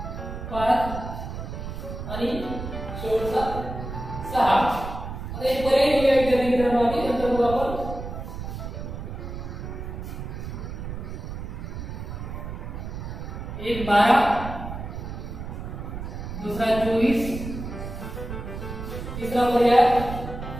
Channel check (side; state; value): right; noise; rumble, 7 dB below the sound